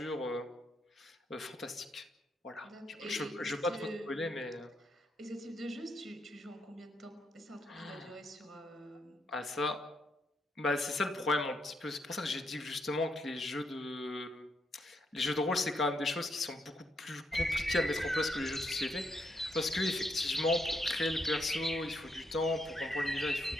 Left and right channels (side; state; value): both; normal; correlation 0.78